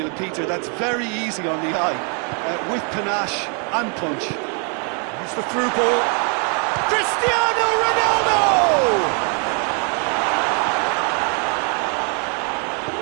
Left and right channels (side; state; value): left; quieter; 39.6 dB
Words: Peter, that's very easy on the eye, with panache and punch. Here's the through ball. Cristiano Ronaldo!